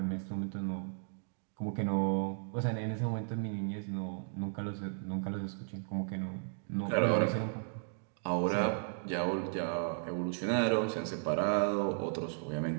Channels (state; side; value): silent; left; digital silence